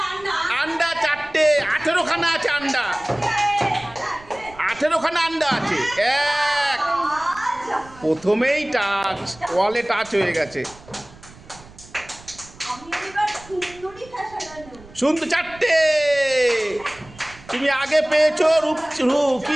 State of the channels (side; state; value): right; noise; rumble, 22 dB below the sound